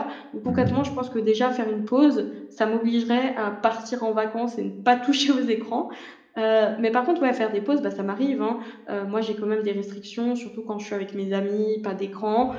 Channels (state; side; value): identical; both; correlation 1.00